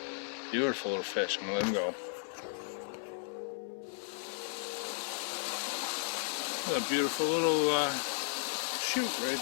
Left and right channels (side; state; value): right; silent; 55 dB below the other